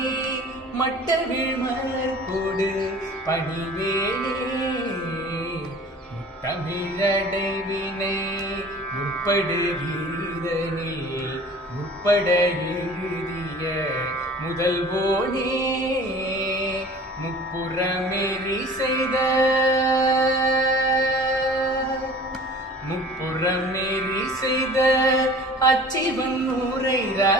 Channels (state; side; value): normal; both; correlation 0.45